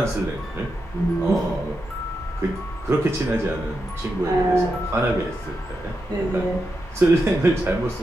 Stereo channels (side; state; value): both; normal; correlation 0.86